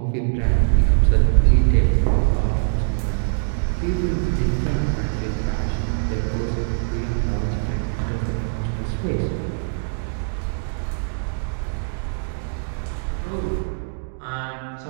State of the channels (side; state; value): left; silent; digital silence